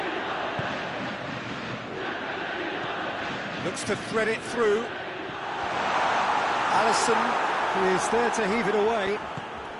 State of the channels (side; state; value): both; identical; correlation 1.00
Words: Looks to thread it through. Alisson is there to heave it away.